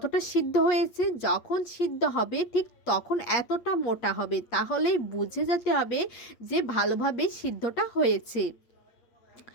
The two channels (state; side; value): late; right; 8.4 ms